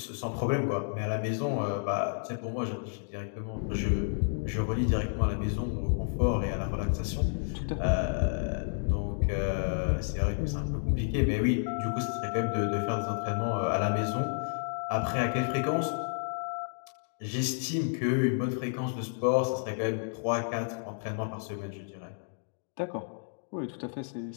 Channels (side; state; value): right; silent; digital silence